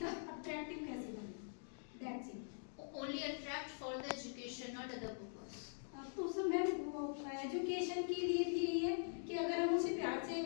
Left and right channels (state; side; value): silent; right; digital silence